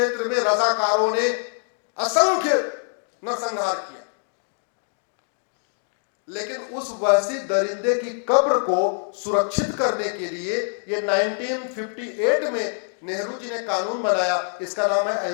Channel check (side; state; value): right; silent; digital silence